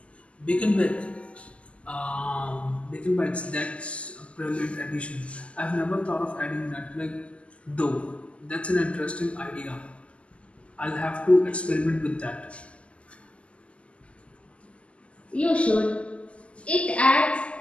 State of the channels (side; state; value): right; late; 0.058 ms